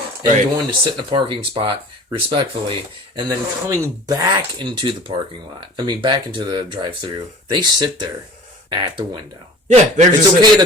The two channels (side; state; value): both; normal; correlation 0.44